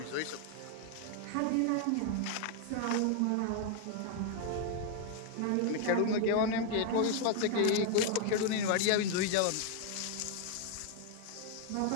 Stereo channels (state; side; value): different; both; correlation 0.00